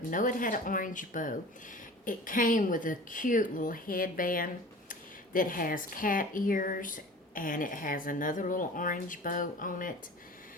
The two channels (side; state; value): both; normal; correlation 0.40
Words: know it had an orange bow. It came with a cute little headband that has cat ears, and it has another little orange bow on it,